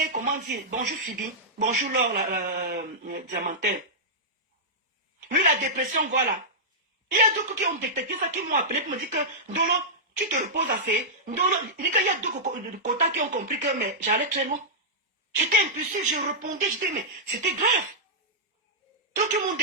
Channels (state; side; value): normal; both; correlation -0.11